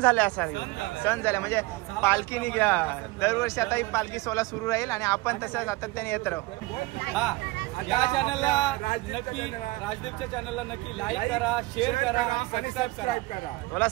झाले असा सण झाला म्हणजे पालखी निघ्या. दरवर्षी आता ही पालखी सोहळा सुरू राहील आणि आपण तसं सातत्याने येत राहू. या चॅनलला नक्की, राजदीपच्या चॅनलला नक्की लाईक करा, शेअर करा आणि सबस्क्राईब करा. बोला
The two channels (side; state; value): left; quieter; 21.4 dB